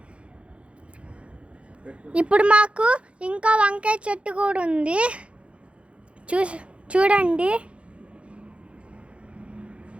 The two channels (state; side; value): late; left; 0.060 ms